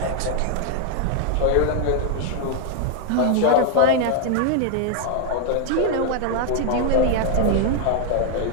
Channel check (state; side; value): different; both; correlation 0.00